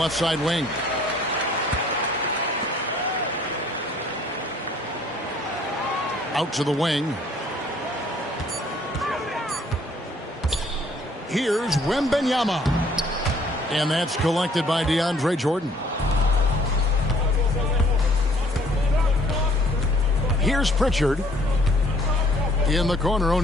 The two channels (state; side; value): normal; both; correlation 0.60